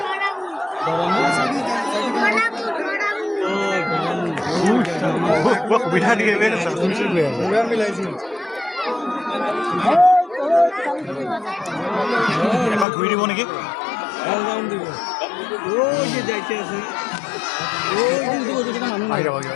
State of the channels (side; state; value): right; drops out; at 12.9 s